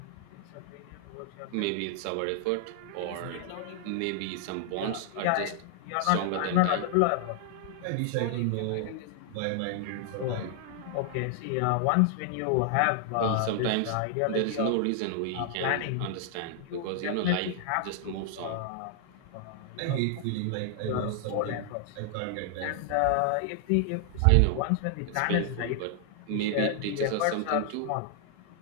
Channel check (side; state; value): both; different; correlation 0.00